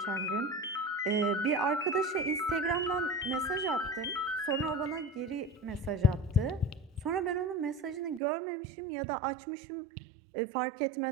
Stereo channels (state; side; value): drops out; left; at 8.2 s